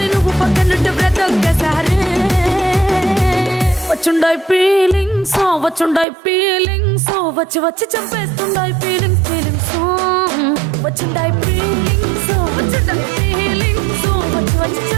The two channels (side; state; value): left; drops out; at 6.1 s